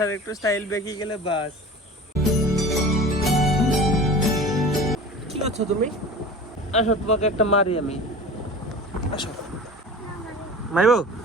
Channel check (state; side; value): normal; both; correlation 0.37